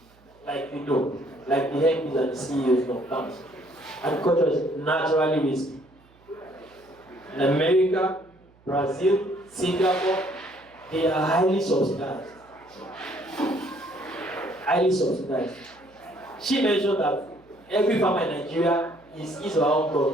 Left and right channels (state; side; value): noise; right; hum, 30 dB below the sound